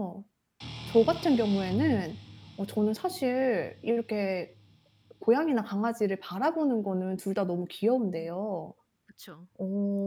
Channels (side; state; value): both; identical; correlation 1.00